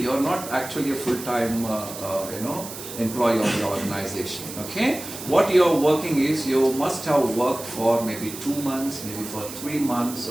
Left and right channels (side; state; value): right; noise; hiss, 11 dB below the sound